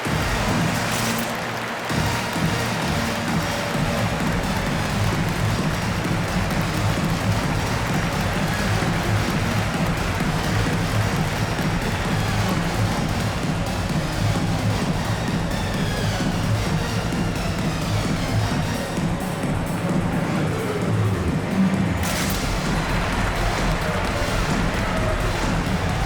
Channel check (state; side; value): identical; both; correlation 1.00